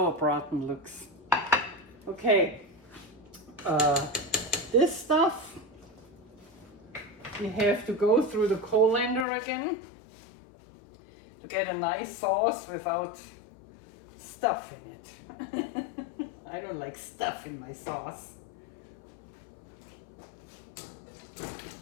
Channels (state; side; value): drops out; right; at 9.2 s